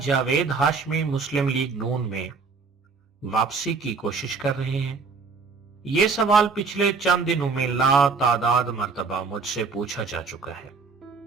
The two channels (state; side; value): quieter; left; 4.7 dB